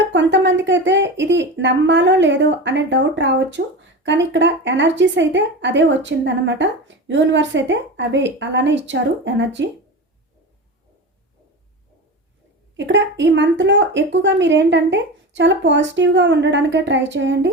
కొంతమందికి అయితే ఇది నమ్మాలో లేదో అనే డౌట్ రావచ్చు, కానీ ఇక్కడ ఎనర్జీస్ అయితే అదే వచ్చిందనమాట. యూనివర్స్ అయితే అవే అలానే ఇచ్చారు ఎనర్జీ. ఇక్కడ ఈ మంత్లో ఎక్కువగా మీరేంటంటే చాలా పాజిటివ్గా ఉండడానికే ట్రై చేయండి.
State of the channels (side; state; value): both; normal; correlation 0.26